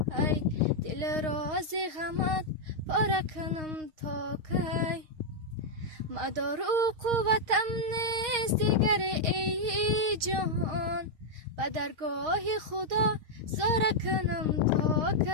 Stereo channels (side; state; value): left; late; 6.4 ms